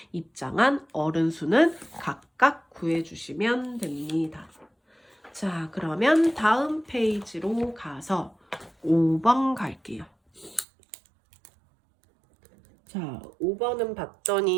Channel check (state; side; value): drops out; left; at 10.7 s